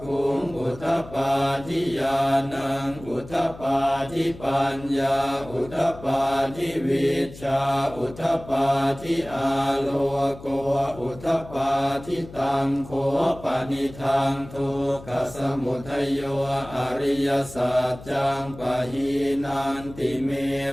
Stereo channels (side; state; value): left; noise; hum, 17 dB below the sound